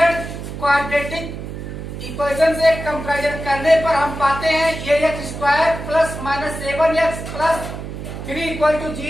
क्वाड्रेटिक इक्वेशन से कंपैरिजन करने पर हम पाते हैं ax² plus -7x plus 3 equal to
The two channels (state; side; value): noise; right; hum, 8 dB below the sound